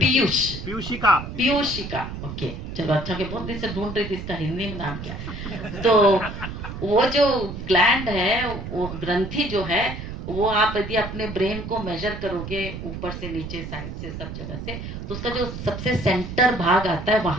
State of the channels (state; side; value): noise; right; rumble, 8 dB below the sound